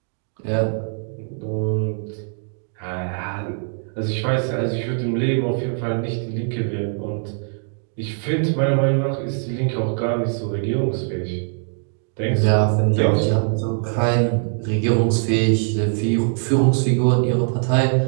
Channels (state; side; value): silent; left; 59 dB below the other